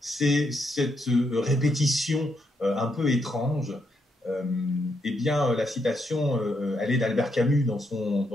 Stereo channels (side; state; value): both; normal; correlation 0.79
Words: c'est cette répétition un peu étrange. Eh bien, la citation, elle est d'Albert Camus dans